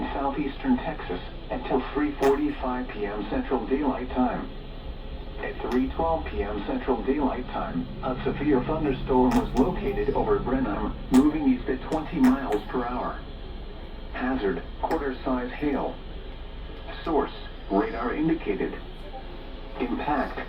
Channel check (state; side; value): identical; both; correlation 1.00